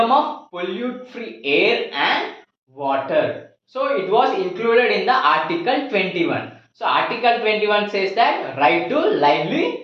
of pollute free air and water, so it was included in the Article 21. So Article 21 says that right to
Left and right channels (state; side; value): identical; both; correlation 1.00